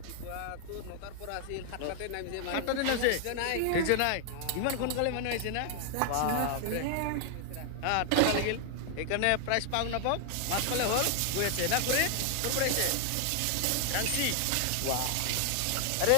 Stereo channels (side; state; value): both; different; correlation 0.00